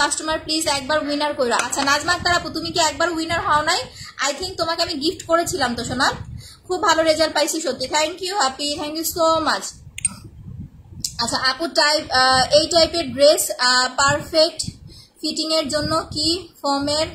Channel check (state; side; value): identical; both; correlation 1.00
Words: কাস্টমার, প্লিজ একবার উইনার কইরা। আচ্ছা নাজমা আক্তার আপু, তুমি কি একবার উইনার হও নাই? আই থিঙ্ক তোমাকে আমি গিফট করেছিলাম তো সোনা, খুব ভালো রেজাল্ট পাইছি সত্যি। Thank you Api, thank you so much. আচ্ছা আপু এই টাইপের ড্রেস পারফেক্ট ফিটিং এর জন্য কি ফর্মের